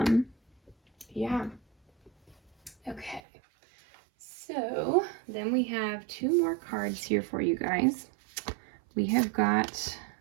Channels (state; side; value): drops out; left; at 3.2 s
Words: Yeah. Okay. So then we have two more cards here for you guys. We have got